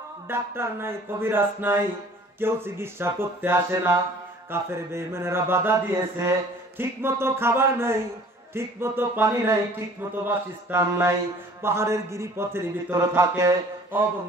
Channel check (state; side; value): normal; both; correlation 0.50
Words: ডাক্তার নাই, কবিরাজ নাই, কেউ চিকিৎসা করতে আসে না। কাফের বেঈমানেরা বাধা দিয়েছে, ঠিক মতো খাবার নাই, ঠিক মতো পানি নাই, ঠিক মতো বাসস্থান নাই, পাহাড়ের গিরিপথের ভিতরে থাকে।